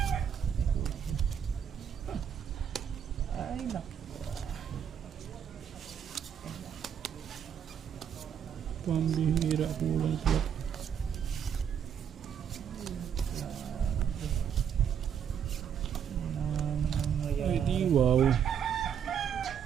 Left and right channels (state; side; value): quieter; left; 8.3 dB